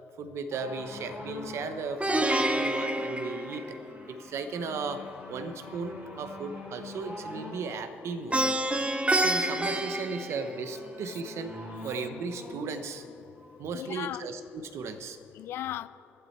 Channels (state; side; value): normal; both; correlation 0.58